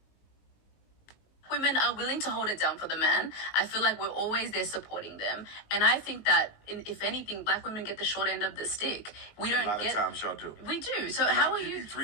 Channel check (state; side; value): late; right; 19 ms